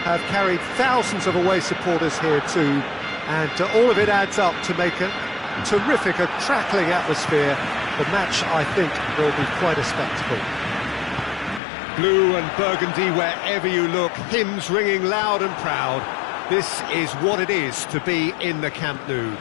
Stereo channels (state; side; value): drops out; right; at 11.6 s